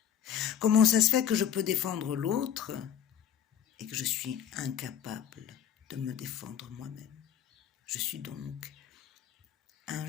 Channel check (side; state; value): right; quieter; 9.0 dB